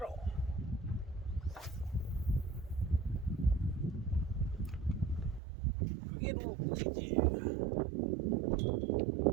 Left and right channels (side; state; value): left; drops out; at 5.4 s